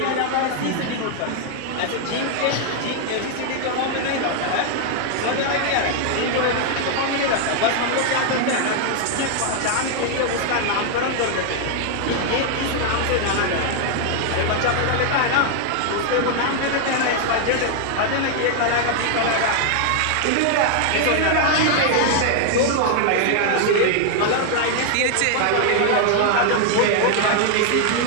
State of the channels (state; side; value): different; both; correlation 0.00